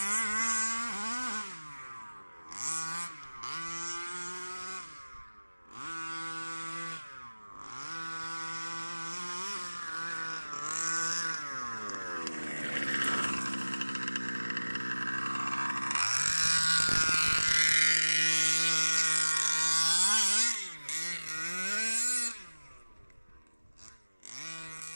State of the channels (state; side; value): inverted; both; correlation -1.00